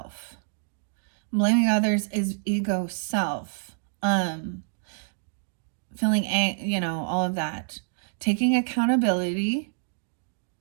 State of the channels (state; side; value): silent; left; digital silence